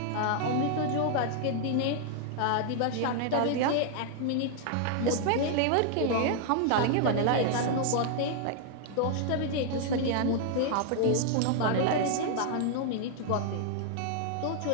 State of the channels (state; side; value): different; both; correlation 0.00